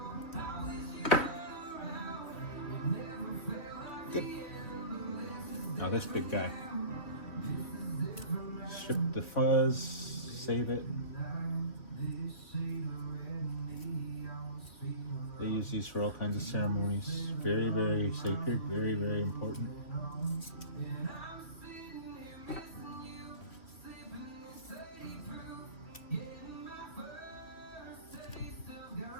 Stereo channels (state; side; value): late; right; 3.1 ms